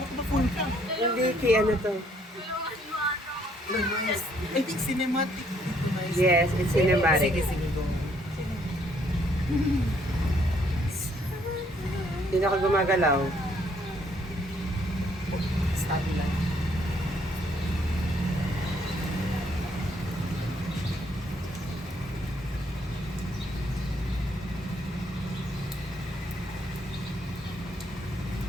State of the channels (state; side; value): normal; both; correlation 0.67